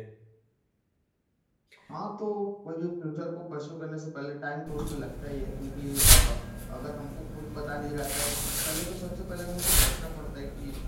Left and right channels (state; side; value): identical; both; correlation 1.00